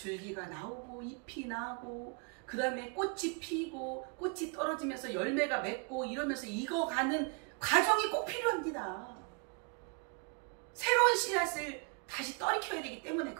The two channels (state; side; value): quieter; left; 35.5 dB